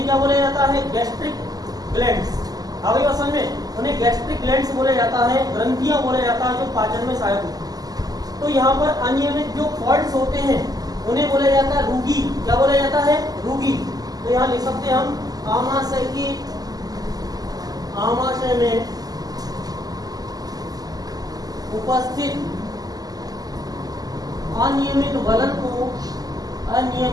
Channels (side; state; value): left; late; 0.18 ms